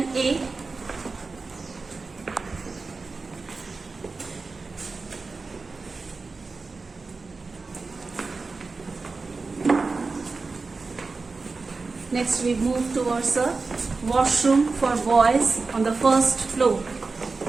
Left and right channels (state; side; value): quieter; left; 4.1 dB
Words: Next we move towards a washroom for boys on the first floor.